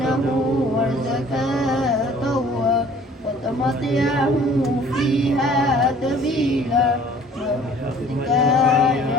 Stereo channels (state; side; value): normal; both; correlation 0.52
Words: وزكاته وتمطعه فيها تبيلا برحمتك